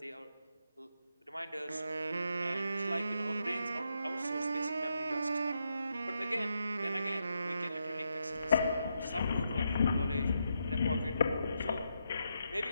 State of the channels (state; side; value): inverted; both; correlation -0.82